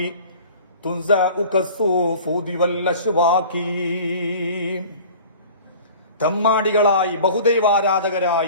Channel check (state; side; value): inverted; both; correlation -0.43